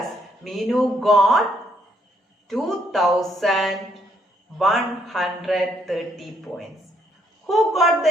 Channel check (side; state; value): both; normal; correlation 0.71